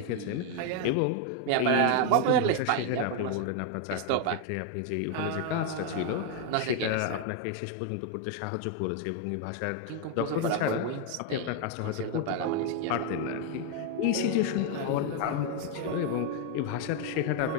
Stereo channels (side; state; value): both; different; correlation 0.01